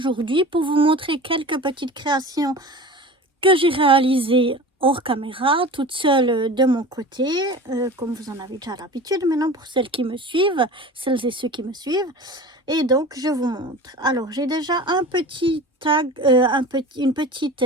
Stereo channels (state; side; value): normal; both; correlation 0.35